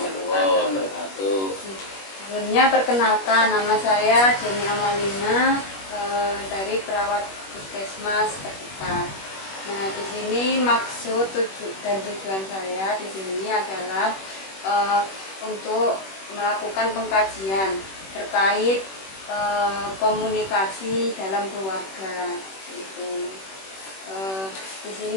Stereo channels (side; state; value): right; late; 21 ms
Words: wabarakatuh. Sebelumnya perkenalkan, nama saya Jenny Amalina dari perawat puskesmas terdekat. Nah, di sini maksud dan tujuan saya di sini adalah untuk melakukan pengkajian terkait komunikasi dalam keluarga. Di